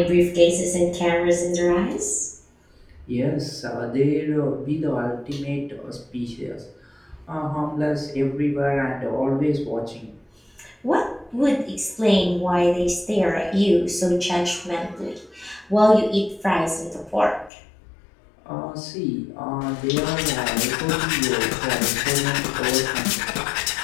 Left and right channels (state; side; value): drops out; right; at 17.5 s